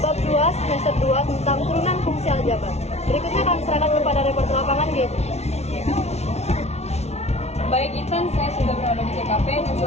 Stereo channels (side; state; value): right; late; 0.31 ms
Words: bab 2 semester 2 tentang turunan fungsi aljabar. Berikutnya kami serahkan kepada reporter lapangan G. Baik Intan, saya sudah berada di TKP dan